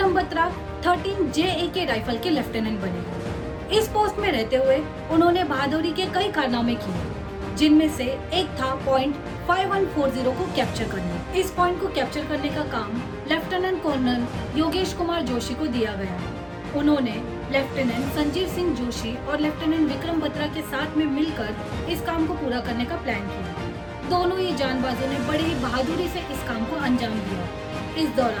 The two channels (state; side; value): identical; both; correlation 1.00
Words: बत्रा 13 JAK राइफल के लेफ्टिनेंट बने। इस पोस्ट में रहते हुए उन्होंने बहादुरी के कई कारनामे किए, जिनमें से एक था पॉइंट 5140 को कैप्चर करना। इस पॉइंट को कैप्चर करने का काम लेफ्टिनेंट कर्नल योगेश कुमार जोशी को दिया गया। उन्होंने लेफ्टिनेंट संजीव सिंह जोशी और लेफ्टिनेंट विक्रम बत्रा के साथ में मिलकर इस काम को पूरा करने का प्लान किया। दोनों ही जानबाजों ने बड़ी ही बहादुरी से इस काम को अंजाम दिया। इस